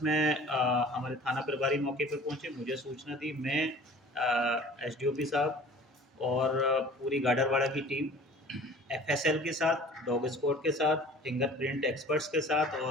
हमारे थाना प्रभारी मौके पर पहुंचे, मुझे सूचना दी। मैं एसडीओपी साहब और पूरी गाडरवाड़ा की टीम एफएसएल के साथ, डॉग स्क्वाड के साथ, फिंगरप्रिंट एक्सपर्ट्स के साथ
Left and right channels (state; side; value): normal; both; correlation 0.46